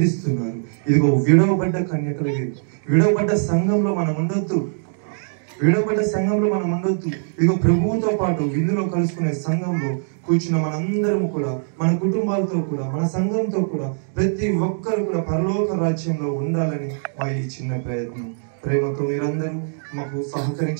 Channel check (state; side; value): silent; left; digital silence